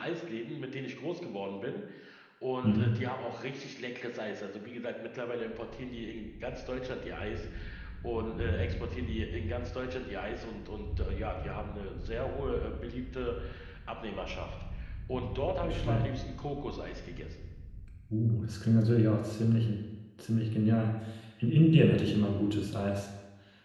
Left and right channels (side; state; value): both; identical; correlation 1.00